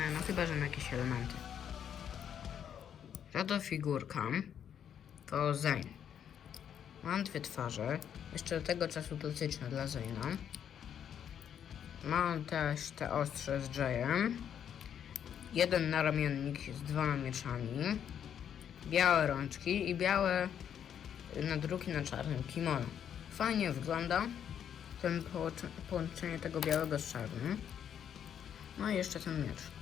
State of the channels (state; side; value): quieter; right; 8.9 dB